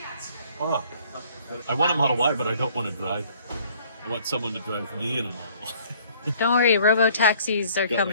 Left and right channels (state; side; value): inverted; both; correlation -0.58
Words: Oh, I want a Model Y, but I don't want to drive it. I want someone to drive me in a Model Y. Don't worry, robo-taxis are Got my